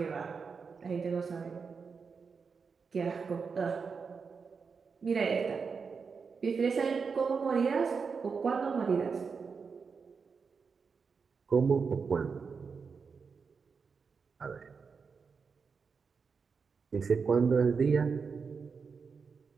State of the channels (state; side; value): quieter; left; 5.4 dB